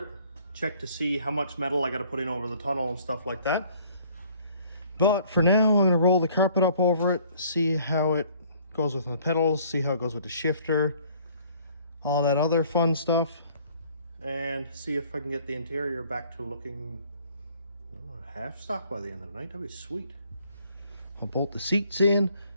check to see how much metal I got to put in over the tunnel and stuff like that. But for now, I'm going to roll the carpet up over it, see how it goes with the pedals, see how it goes with the shifter, all that other fun stuff, and see if I can get the interior back to looking half stock by the end of the night. That'd be sweet. I'll bolt the seats in.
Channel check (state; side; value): inverted; both; correlation -0.57